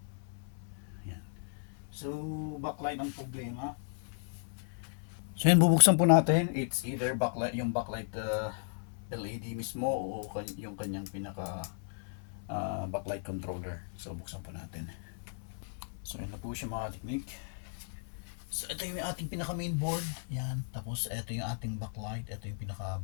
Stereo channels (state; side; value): silent; right; 54 dB below the other